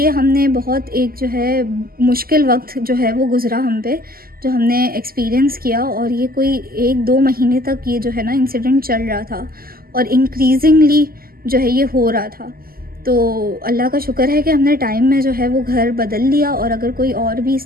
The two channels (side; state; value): left; late; 0.42 ms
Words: हमने बहुत एक जो है मुश्किल वक्त जो है वो गुज़रा हम पे, जो हमने एक्सपीरियंस किया, और ये कोई 1-2 महीने तक ये जो है ना इंसिडेंट चल रहा था, और इंक्रीजिंगली जो है ये हो रहा था। तो अल्लाह का शुक्र है कि हमने टाइम में जो है वो घर बदल लिया, और अगर कोई और भी